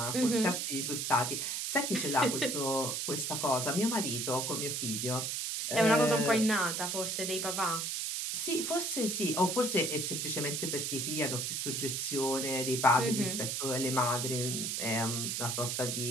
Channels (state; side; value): noise; right; hiss, 1 dB below the sound